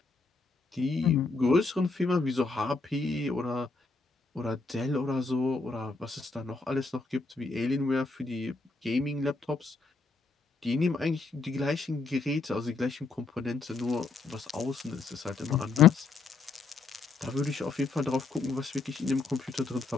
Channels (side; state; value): right; quieter; 4.0 dB